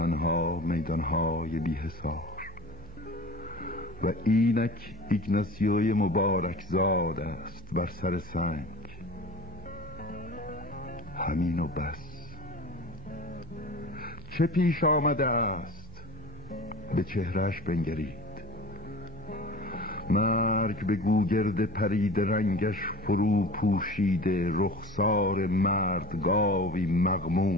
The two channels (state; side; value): noise; right; hum, 16 dB below the sound